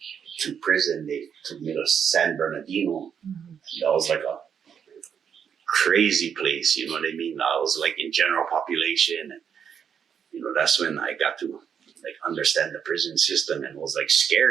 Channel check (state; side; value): quieter; left; 7.6 dB